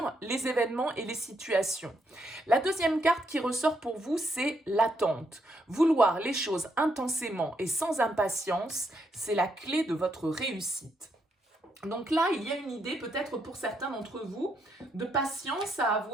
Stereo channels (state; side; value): normal; both; correlation 0.77